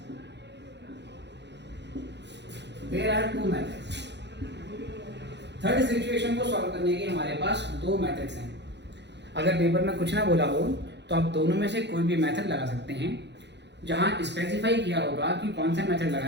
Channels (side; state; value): left; late; 0.50 ms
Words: there are two methods. Third situation को सॉल्व करने के हमारे पास दो मेथड्स हैं। अगर पेपर में कुछ ना बोला हो तो आप दोनों में से कोई भी मेथड लगा सकते हैं। जहां स्पेसिफाई किया होगा कि कौन सा मेथड